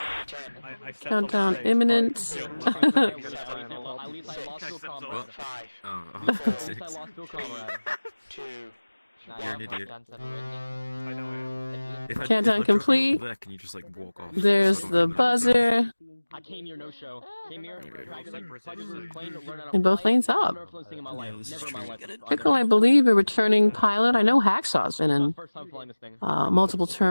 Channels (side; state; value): both; inverted; correlation -1.00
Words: stepped Countdown off the stage. imminent. At least I lost to a comrade. Oh, At least I lost to a comrade. 2. You're an idiot. I know I am. Countdown complete. Can you just like walk off? There's the buzzer. I came here no show. Came here, And both lanes up. Pickle, I believe, a returning pilot. I know Hacksaw's been in multiple